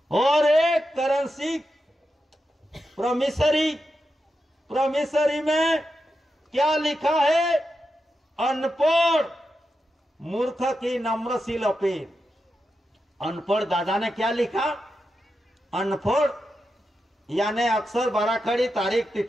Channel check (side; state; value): both; normal; correlation 0.88